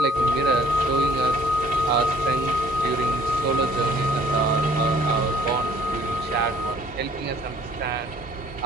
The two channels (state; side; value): normal; both; correlation 0.57